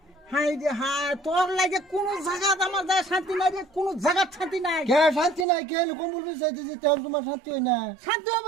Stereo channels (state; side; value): drops out; left; at 5.5 s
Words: হাই রে হাই তোর লাগে কোন জায়গা আমার যায় শান্তি নাই রে কোন জায়গা শান্তি নাই কে শান্তি নাই কে কম্বল বিছাইতে যে তেল তোমার শান্তি হয় না শান্তি